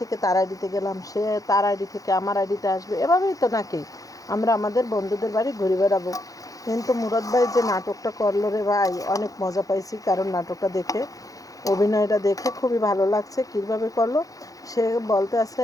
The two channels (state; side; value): late; right; 0.17 ms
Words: থেকে তার আইডিতে গেলাম, সে তার আইডি থেকে আমার আইডিতে আসবে, এভাবেই তো নাকি আমরা আমাদের বন্ধুদের বাড়ি ঘুরে বেড়াবো। কিন্তু মুরাদ ভাই যে নাটকটা করলো রে ভাই, অনেক মজা পাইছি, কারণ নাটকটা দেখে, অভিনয়টা দেখে খুবই ভালো লাগছে। কীভাবে করলো, সে বলতে আছে